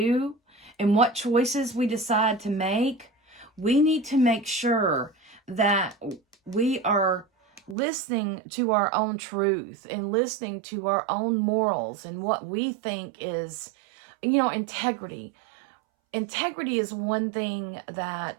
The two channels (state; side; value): drops out; left; at 7.8 s